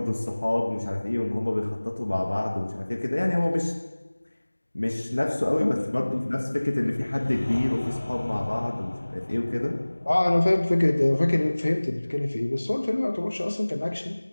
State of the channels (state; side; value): inverted; both; correlation -1.00